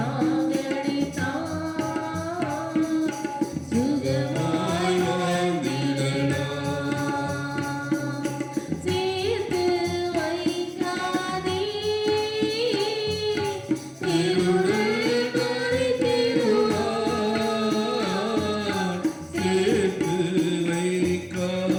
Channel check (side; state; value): both; identical; correlation 1.00